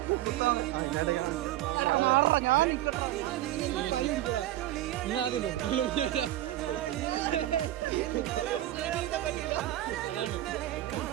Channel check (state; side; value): quieter; left; 14.3 dB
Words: ഞാൻ ആദ്യം പോകും.